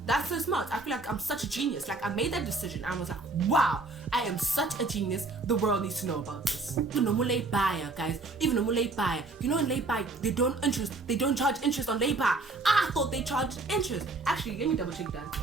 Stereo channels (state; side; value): quieter; left; 3.5 dB